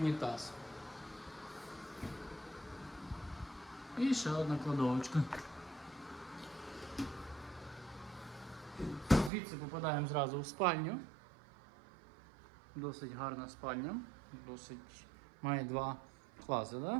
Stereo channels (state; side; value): drops out; left; at 9.3 s